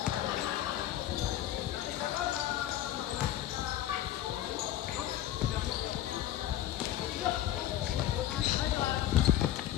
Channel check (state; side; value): quieter; right; 12.6 dB